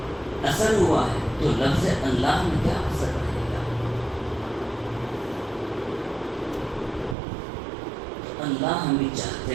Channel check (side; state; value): left; drops out; at 7.2 s